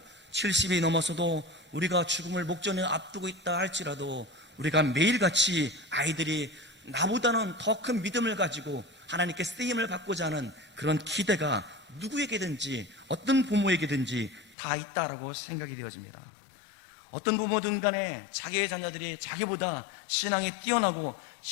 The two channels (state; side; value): drops out; right; at 14.6 s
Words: 70이 넘어서도 우리가 죽음을 목전에 앞두고 있다 할지라도 우리가 매일같이 아이들이 나보다는 더 큰 믿음을 가지고 하나님께 쓰임을 받고자 하는 그런 기대가 누구에게든지 어떤 부모에게든지 다 있다라고 생각이 되어집니다. 어떤 부모든 간에 자기의 자녀들이 자기보다 신앙이 뛰어나고